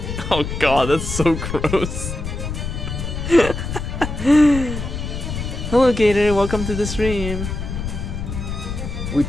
Oh god, that's so gross. Hello Gator, welcome to the stream. We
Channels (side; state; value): left; noise; rumble, 5 dB below the sound